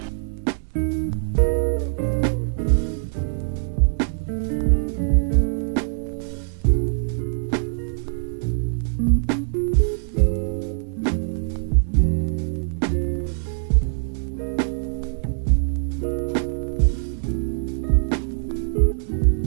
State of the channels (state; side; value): silent; left; digital silence